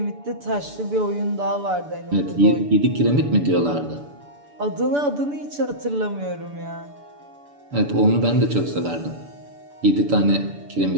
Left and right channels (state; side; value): late; left; 6.9 ms